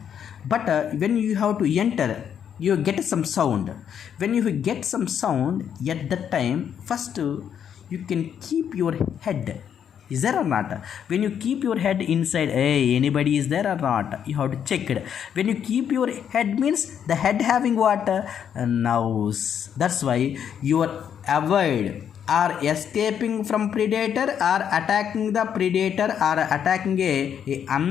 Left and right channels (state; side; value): quieter; right; 8.6 dB